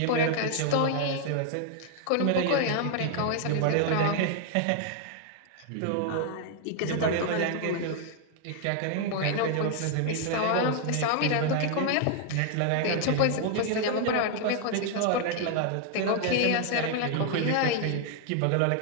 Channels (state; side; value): different; both; correlation 0.00